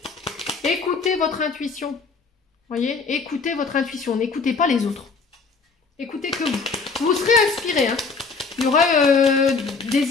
écoutez votre intuition. Vous voyez, écoutez votre intuition, n'écoutez pas les autres. Écoutez que vous. Vous serez inspiré. Hein. Il y aura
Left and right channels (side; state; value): right; quieter; 4.6 dB